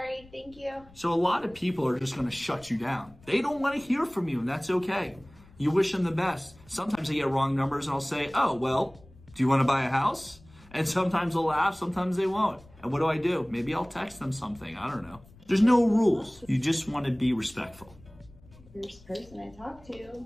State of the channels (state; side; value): noise; left; rumble, 25 dB below the sound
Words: Thank you. So a lot of people are just going to shut you down. They don't want to hear from you, and that's okay. You wish them the best. Sometimes they get wrong numbers, and I'll say, oh, well, do you want to buy a house? And sometimes they'll laugh, sometimes they won't. And what do? Maybe I'll text them something. I don't know. There's no rules. You just want to be respectful. First person I talked to.